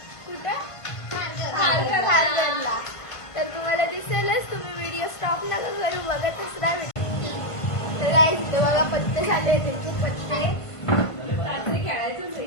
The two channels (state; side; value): late; right; 1.5 ms